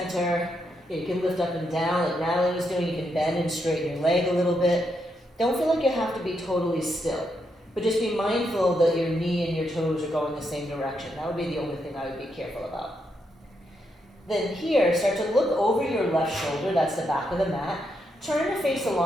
You can lift up and down like Natalie was doing. You can bend and straighten your leg a little bit. Don't feel like you have to be totally still, but just be mindful that your knee and your toes are going the same direction. That would be the only thing I would be careful about. Then here, start to look over your left shoulder, that's the back of the mat. Turn to face the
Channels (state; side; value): normal; both; correlation 0.80